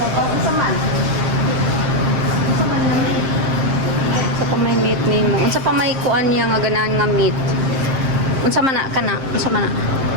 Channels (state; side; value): late; left; 7.5 ms